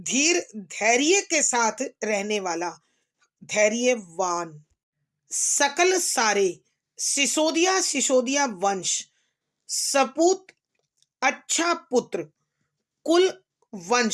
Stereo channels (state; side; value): identical; both; correlation 1.00